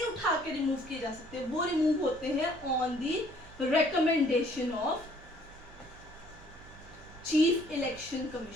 उठा के रिमूव किए जा सकते, वो रिमूव होते हैं on the recommendation of chief election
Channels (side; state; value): right; noise; hum, 21 dB below the sound